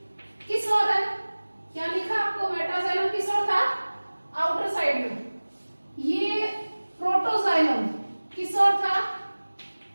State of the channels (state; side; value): inverted; both; correlation -1.00